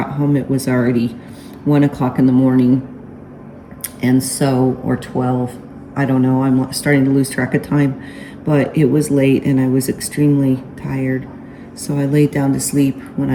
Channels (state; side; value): identical; both; correlation 1.00